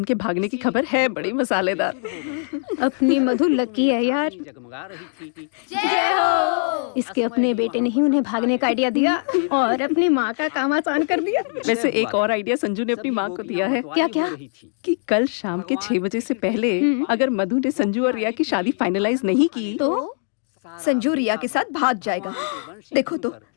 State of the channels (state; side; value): silent; right; digital silence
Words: के भागने की खबर है बड़ी मसालेदार। अपनी मधु लकी है यार। जय हो। इसके अपने बेटे ने ही उन्हें भागने का आइडिया दिया और अपनी माँ का काम आसान कर दिया। वैसे एक और आइडिया संजू ने अपनी माँ को दिया है। क्या क्या? कि कल शाम के 6 बजे से पहले अगर मधु ने संजू और रिया की शादी फाइनलाइज नहीं की तो संजू रिया के साथ भाग जाएगा। देखो तो